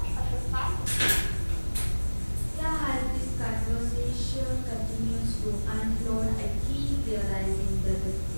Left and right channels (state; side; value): inverted; both; correlation -1.00